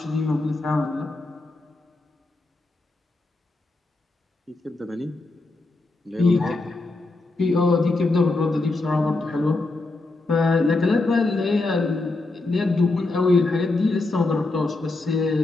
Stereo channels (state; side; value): quieter; right; 3.1 dB